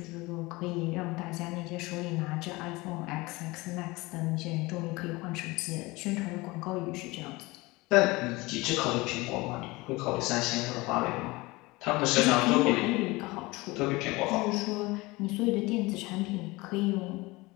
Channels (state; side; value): quieter; right; 22.5 dB